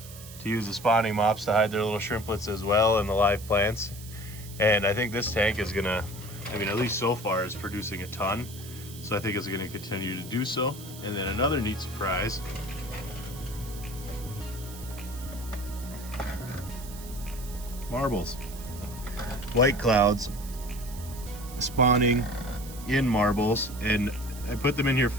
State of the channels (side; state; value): right; noise; hiss, 16 dB below the sound